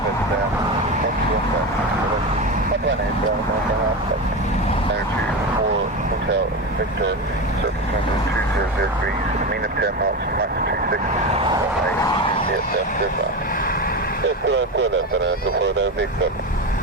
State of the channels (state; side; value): normal; both; correlation 0.20